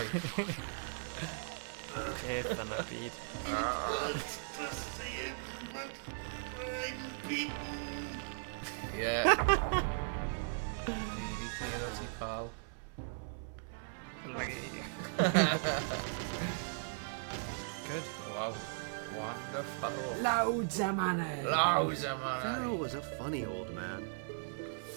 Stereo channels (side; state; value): left; silent; 53 dB below the other